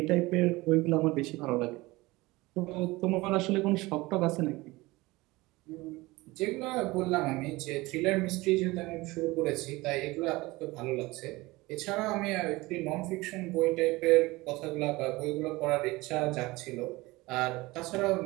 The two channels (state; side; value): quieter; left; 21.1 dB